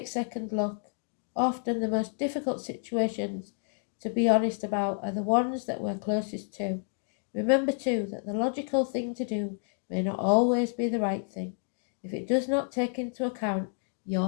second look. Often the most difficult situations to be honest about are the ones that we're closest to. Remember too that the logical thing to do may not always be the right thing, if it does not take into account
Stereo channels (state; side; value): silent; right; 58 dB below the other